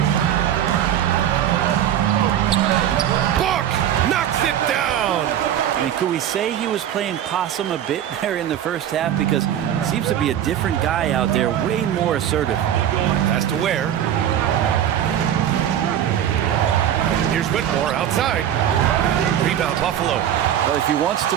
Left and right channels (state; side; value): quieter; left; 10.5 dB